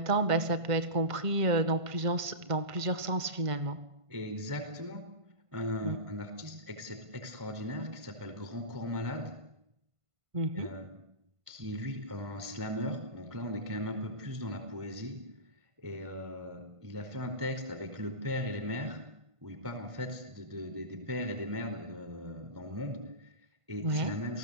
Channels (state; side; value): late; left; 1.5 ms